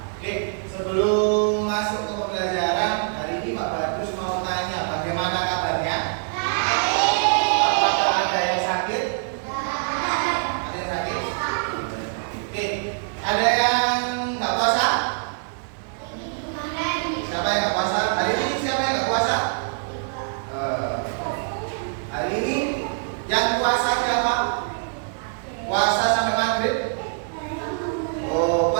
Oke, sebelum masuk ke pembelajaran hari ini, Pak Bagus mau tanya bagaimana kabarnya? Apakah ada yang sakit? Ada yang sakit? Oke, ada yang nggak puasa? Siapa yang nggak puasa? Hari ini siapa yang nggak puasa? Hari ini yang puasa siapa? Puasa sampai maghrib? Oh,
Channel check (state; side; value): silent; left; digital silence